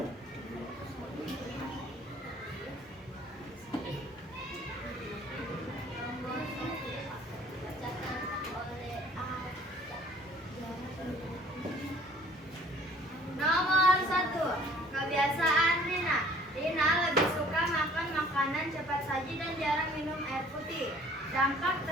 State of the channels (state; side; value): normal; both; correlation 0.54